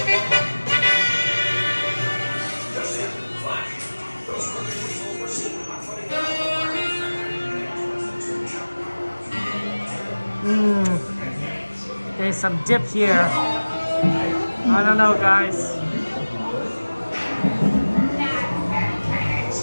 There's some dip here. I don't know, guys.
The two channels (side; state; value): both; inverted; correlation -1.00